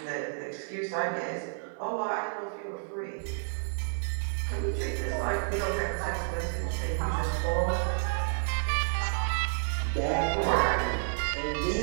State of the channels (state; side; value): silent; left; 58 dB below the other